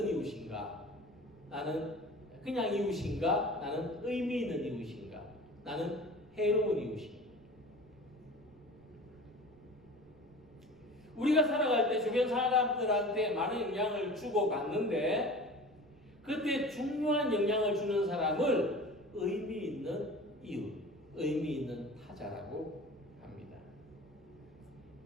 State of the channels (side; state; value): right; noise; rumble, 28 dB below the sound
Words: 이웃인가? 나는 그냥 이웃인가? 나는 의미 있는 이웃인가? 나는 해로운 이웃인가? 우리가 살아갈 때 주변 사람들한테 많은 영향을 주고 받는데 그때 중요한 영향을 주는 사람을 의미 있는 이웃, 의미 있는 타자라고 합니다.